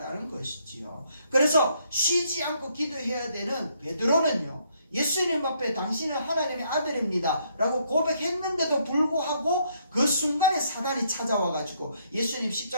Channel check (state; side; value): inverted; both; correlation -0.71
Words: 것이지요. 그래서 쉬지 않고 기도해야 되는 베드로는요, 예수님 앞에 당신은 하나님의 아들입니다 라고 고백했는데도 불구하고 그 순간에 사단이 찾아와가지고 예수님